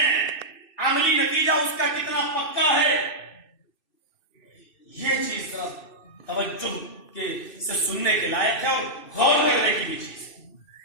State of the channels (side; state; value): right; late; 2.6 ms